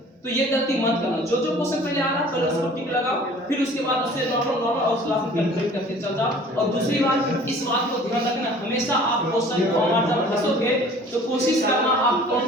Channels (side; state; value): both; normal; correlation 0.49